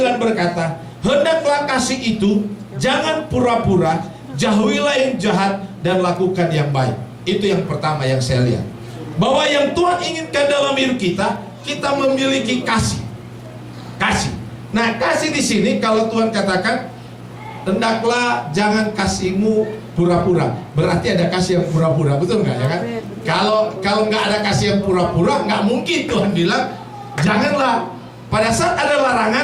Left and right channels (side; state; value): both; identical; correlation 1.00